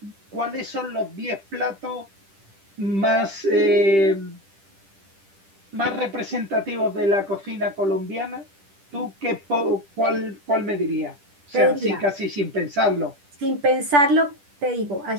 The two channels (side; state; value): left; late; 10 ms